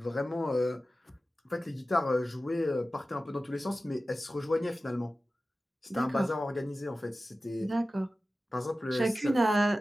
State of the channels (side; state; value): both; normal; correlation 0.95